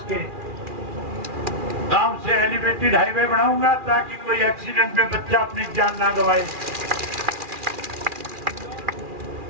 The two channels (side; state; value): left; late; 2.4 ms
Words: गांव से एलिवेटेड हाईवे बनाऊंगा ताकि कोई एक्सीडेंट में बच्चा अपनी जान ना गवाए।